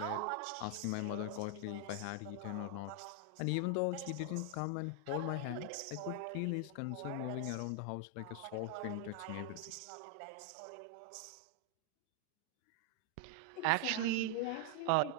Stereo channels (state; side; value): different; both; correlation 0.00